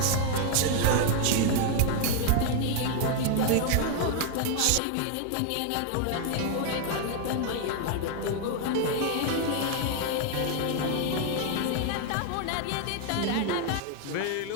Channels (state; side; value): different; both; correlation 0.00